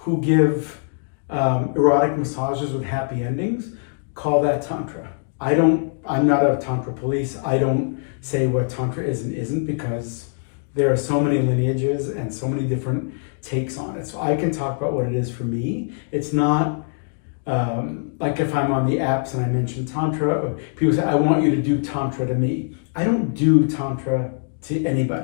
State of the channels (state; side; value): silent; right; digital silence